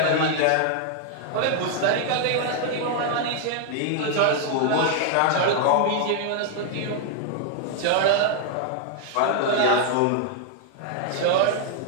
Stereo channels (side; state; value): both; different; correlation 0.00